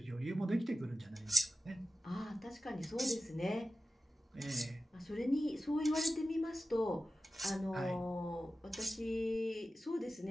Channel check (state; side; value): normal; both; correlation 0.93